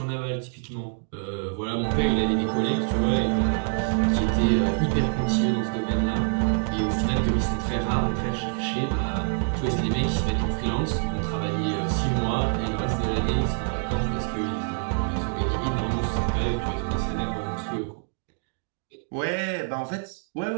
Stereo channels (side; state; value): left; silent; 57 dB below the other